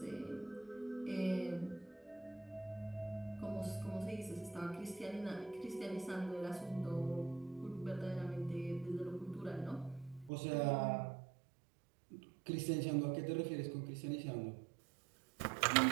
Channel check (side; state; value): left; drops out; at 10.3 s